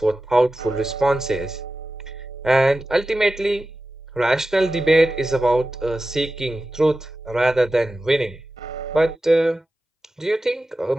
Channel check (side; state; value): both; normal; correlation 0.94